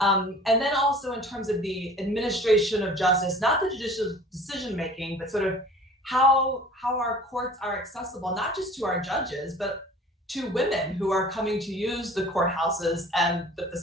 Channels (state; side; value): normal; both; correlation 0.46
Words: then also in terms of the administration of justice, not the judicial decision making, but sort of how our courts are accessible, not just to our judges, but to women who are coming to use the courthouses and the